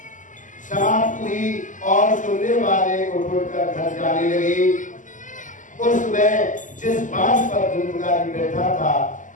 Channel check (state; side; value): late; right; 0.37 ms